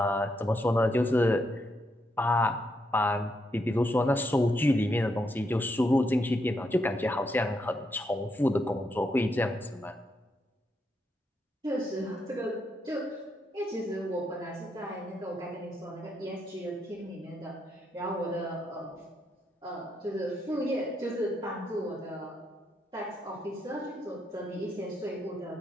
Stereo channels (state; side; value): normal; both; correlation 0.79